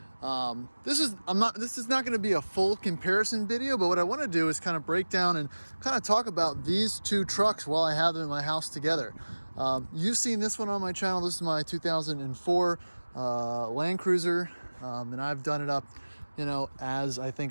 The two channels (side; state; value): both; inverted; correlation -1.00